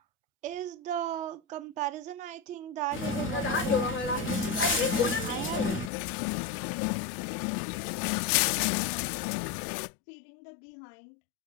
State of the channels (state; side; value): drops out; right; at 5.9 s